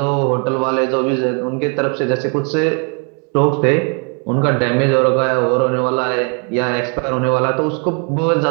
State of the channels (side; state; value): left; quieter; 38.0 dB